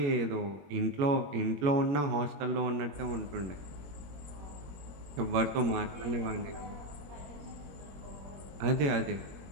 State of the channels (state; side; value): late; left; 21 ms